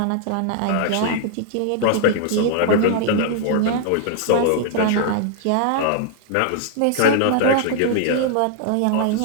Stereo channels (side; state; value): both; different; correlation 0.00